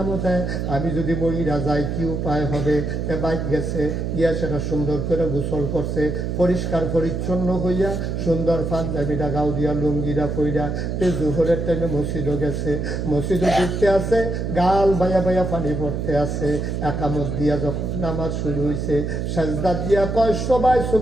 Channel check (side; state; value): right; noise; hum, 2 dB below the sound